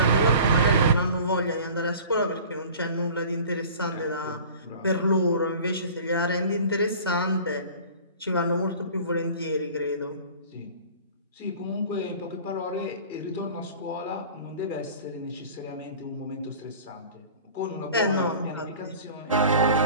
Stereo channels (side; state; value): both; inverted; correlation -0.43